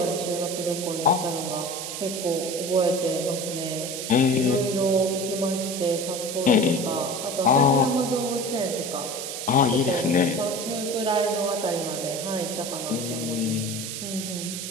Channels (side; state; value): right; noise; hiss, 6 dB below the sound